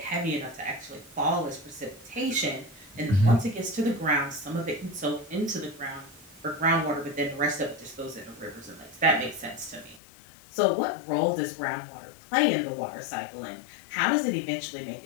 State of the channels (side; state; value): right; drops out; at 10.0 s